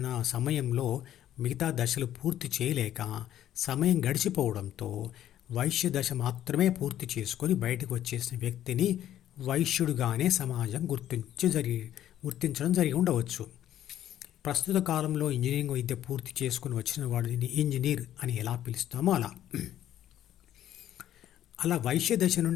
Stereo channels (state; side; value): quieter; right; 11.7 dB